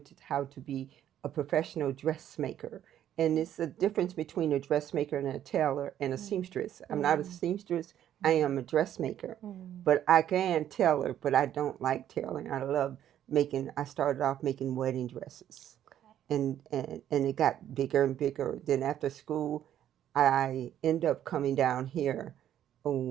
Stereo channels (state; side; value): quieter; left; 10.9 dB